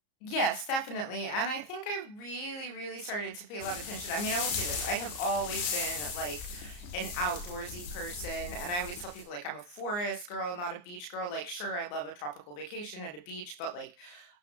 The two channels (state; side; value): late; right; 34 ms